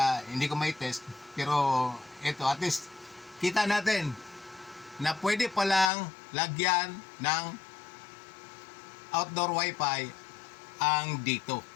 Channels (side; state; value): right; drops out; at 5.9 s